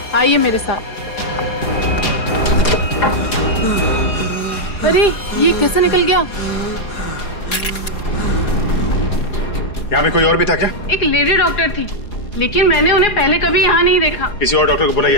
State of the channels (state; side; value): late; right; 4.8 ms